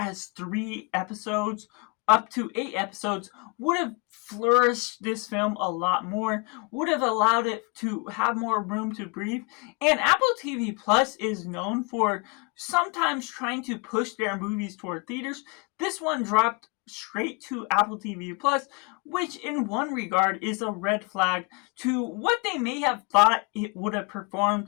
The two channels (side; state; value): right; quieter; 31.2 dB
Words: 3 episodes, up to 8 episodes, would have flourished this film a lot more, would have allowed it to have more room to breathe. And Apple TV Plus is known for sometimes trying to push their movies toward theaters. This one dropped straight to Apple TV Plus, which in one regard is a red flag to what they may have thought it would have